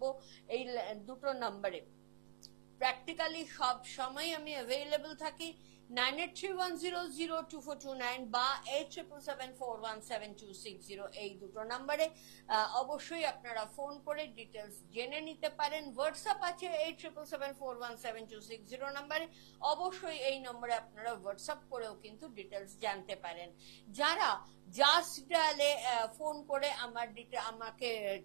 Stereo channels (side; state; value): left; silent; digital silence